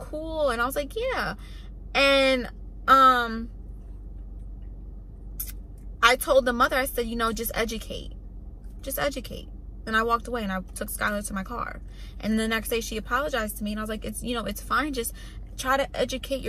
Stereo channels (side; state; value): both; identical; correlation 1.00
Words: And I was like, "Yeah." And I told the mother, I said, just educate. Just educate. And I walked away and I took Skylar to my car. And the next day she apologized to me, and I was like, it's fine. Just try to educate